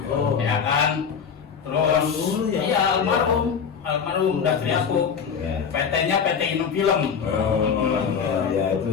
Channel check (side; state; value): right; quieter; 6.7 dB